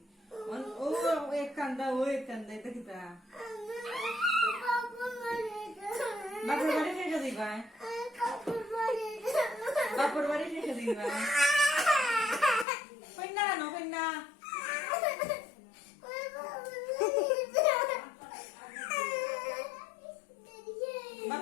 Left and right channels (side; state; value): right; drops out; at 12.7 s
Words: ও এক কান্দা ও এক কান্দা এটা গীতা বাপুর বাড়ি শেষে দিবা বাপুর বাড়ি শেষে দিবা কন্যা কেন কন্যা